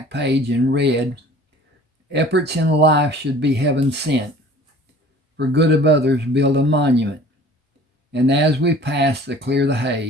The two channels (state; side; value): normal; both; correlation 0.47